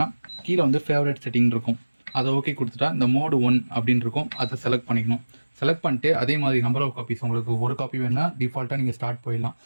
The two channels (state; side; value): inverted; both; correlation -1.00